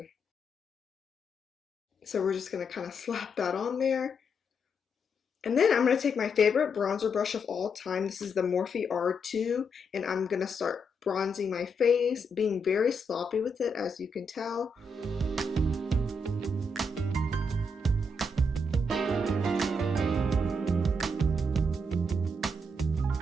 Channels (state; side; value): normal; both; correlation 0.79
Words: So we're just going to kind of slap that on there. And then I'm going to take my favorite bronzer brush of all time. This is the Morphe R2, and I'm going to start bronzing my face, being very sloppy with it, as you can tell.